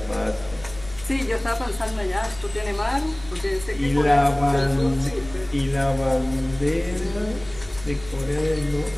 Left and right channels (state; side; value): noise; left; rumble, 17 dB below the sound